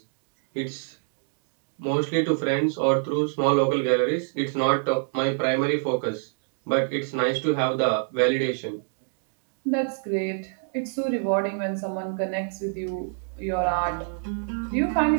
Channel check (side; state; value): left; silent; digital silence